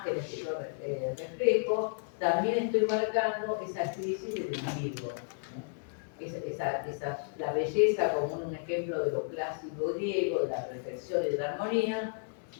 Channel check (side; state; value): right; silent; digital silence